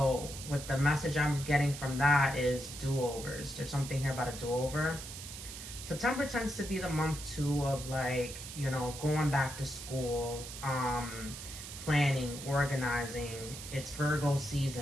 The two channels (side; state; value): right; noise; hiss, 10 dB below the sound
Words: what the message I'm getting from that is do-overs. There's something here about a do-over. September tends to be the month too of like, you know, going back to school, planning, organizing. It's Virgo